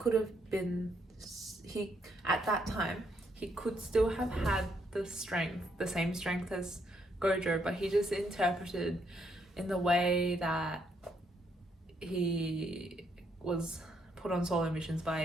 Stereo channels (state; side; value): normal; both; correlation 0.74